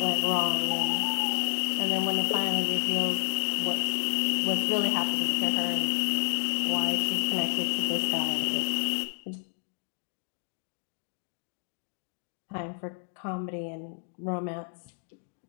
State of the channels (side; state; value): right; silent; digital silence